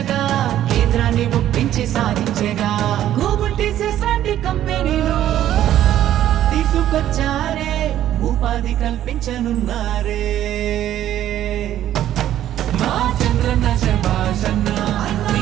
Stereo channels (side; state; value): left; quieter; 12.1 dB